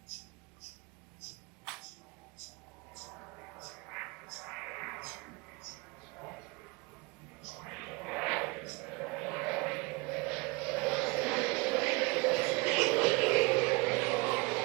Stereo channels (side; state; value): left; quieter; 26.6 dB